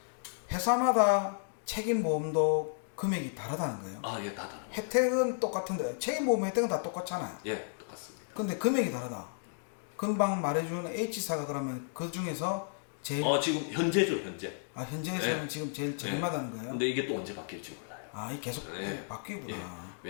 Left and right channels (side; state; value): right; silent; digital silence